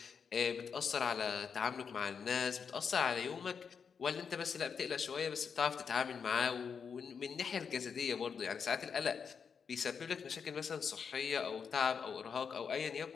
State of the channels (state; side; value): quieter; right; 6.4 dB